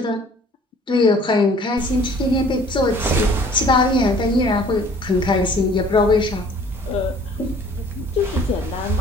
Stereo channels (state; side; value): normal; both; correlation 0.53